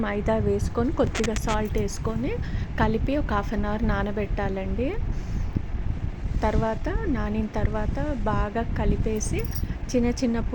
మైదా వేసుకొని, కొద్దిగా సాల్ట్ ఏసుకొని, కలిపి ఒక హాఫ్ అన్ అవర్ నానబెట్టాలండి. నానిన తర్వాత బాగా కలిపేసి చిన్న చిన్న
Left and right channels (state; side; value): identical; both; correlation 1.00